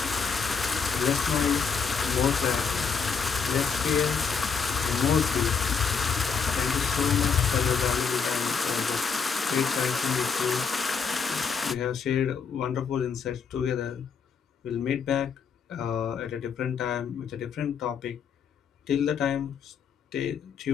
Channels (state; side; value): quieter; right; 6.0 dB